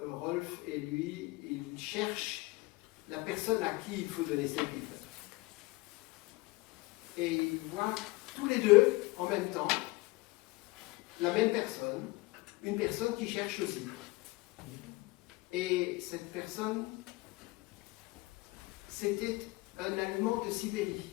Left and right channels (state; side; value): quieter; right; 22.3 dB